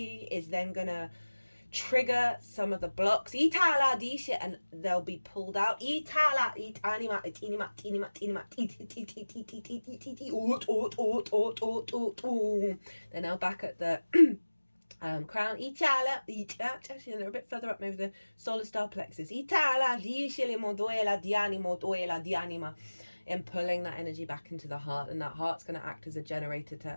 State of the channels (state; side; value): inverted; both; correlation -1.00